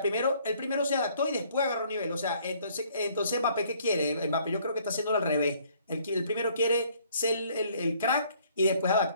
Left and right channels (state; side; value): inverted; both; correlation -0.61